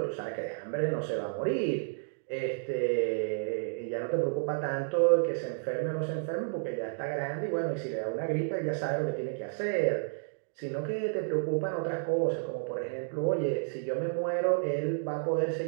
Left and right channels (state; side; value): silent; left; digital silence